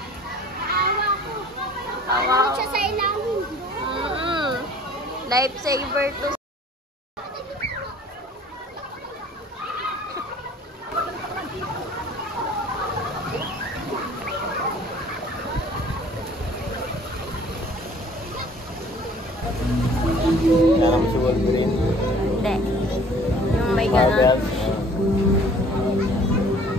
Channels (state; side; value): normal; both; correlation 0.52